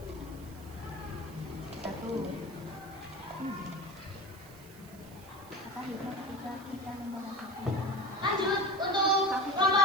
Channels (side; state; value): right; noise; hiss, 21 dB below the sound